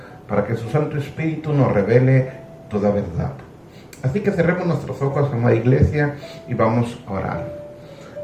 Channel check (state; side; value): identical; both; correlation 1.00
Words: para que su Santo Espíritu nos revele toda verdad. Así que cerremos nuestros ojos, amada Iglesia, y vamos a orar.